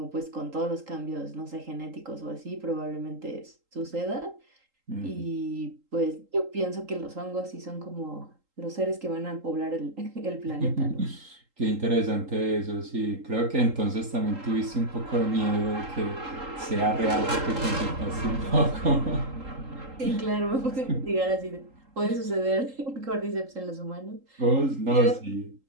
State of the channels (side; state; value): left; late; 3.8 ms